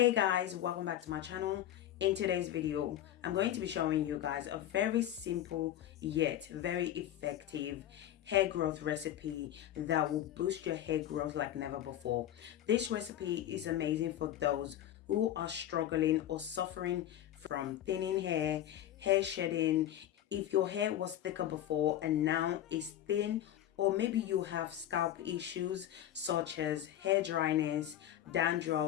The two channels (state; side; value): quieter; right; 12.0 dB